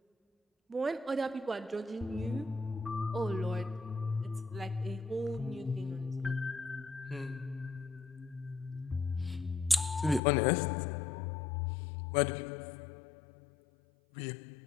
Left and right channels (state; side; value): drops out; right; at 10.2 s